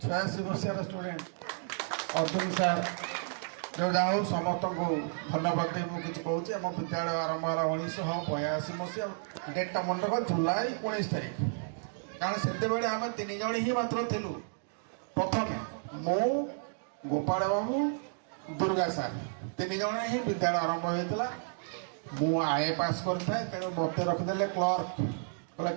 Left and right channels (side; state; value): left; silent; digital silence